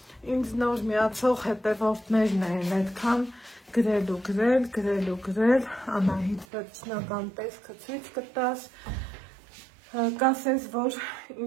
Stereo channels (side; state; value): left; drops out; at 6.5 s